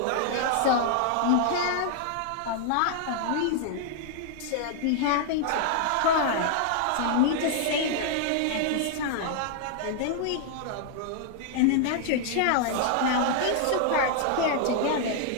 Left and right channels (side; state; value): both; different; correlation 0.00